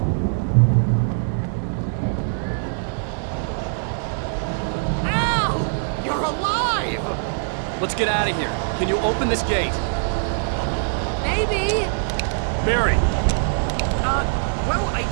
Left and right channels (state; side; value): silent; left; digital silence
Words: Let's get out of here. Can you open this gate? Maybe. Barry! Well, I